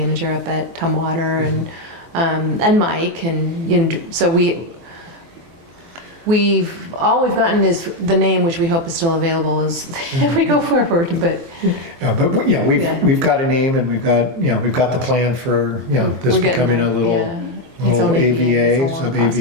up at Tumwater, and Mike, and so all we've gotten is the name, which we hope is still available as if we go forward. But we've got a name, and we've got the plan for this we're getting becoming there. a little, Its own AVA, AVA, it's a long sub process,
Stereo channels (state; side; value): late; left; 24 ms